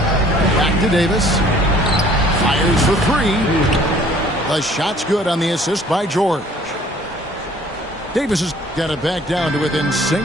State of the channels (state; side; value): normal; both; correlation 0.55